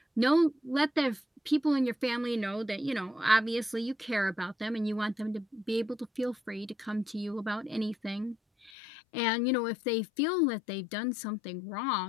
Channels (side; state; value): right; drops out; at 8.7 s